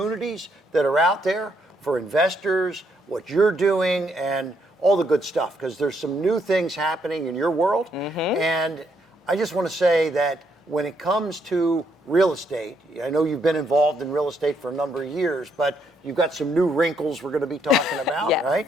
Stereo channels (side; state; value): both; normal; correlation 0.74